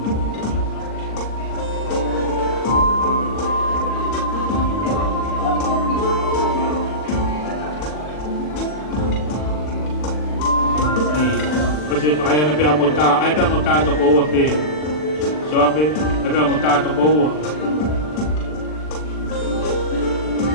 se pa ai pe amota ai pe amota to ko pe Sioape ai pe amota to ko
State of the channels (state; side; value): late; right; 40 ms